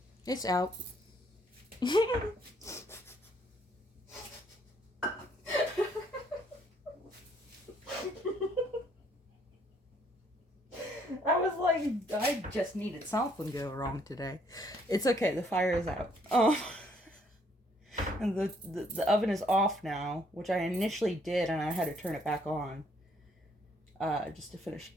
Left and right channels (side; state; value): both; normal; correlation 0.67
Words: It's out. I was like, I just needed something to go wrong today. It's okay, the fire is out. And the oven is off now, which I initially did, and I had to turn it back on. Just to finish